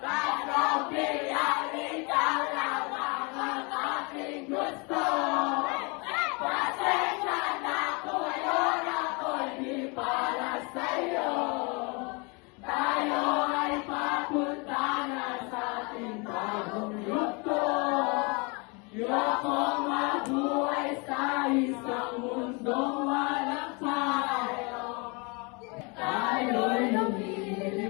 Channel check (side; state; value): right; quieter; 30.8 dB